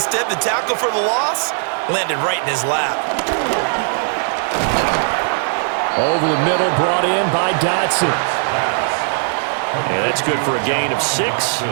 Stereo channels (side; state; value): left; silent; 67 dB below the other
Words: the tackle for the loss landed right in his lap. Over the middle, brought in by Dotson. And that's good for a gain of 6.